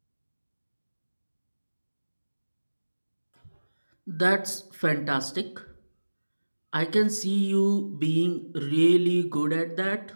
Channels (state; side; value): inverted; both; correlation -1.00